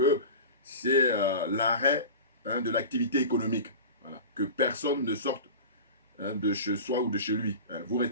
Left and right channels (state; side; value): inverted; both; correlation -0.33